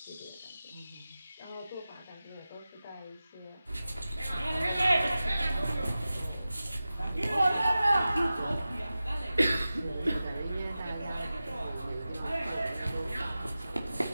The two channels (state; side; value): inverted; both; correlation -0.95